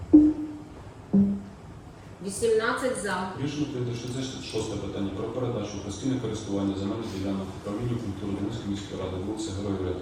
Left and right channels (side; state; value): both; identical; correlation 1.00